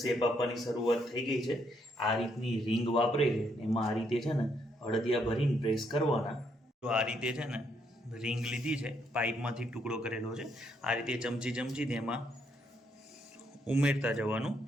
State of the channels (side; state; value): both; normal; correlation 0.74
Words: શેપ આપવાની શરૂઆત થઈ ગઈ છે. આ રીતની રિંગ વાપરે છે એમાં આ રીતે છે ને અડદિયા ભરીને પ્રેસ કરવાના. તો આ રીતે છે ને રિંગ લીધી છે, પાઇપમાંથી ટુકડો કરેલો છે. આ રીતે ચમચી એમાં ઉમેરતા જવાનું,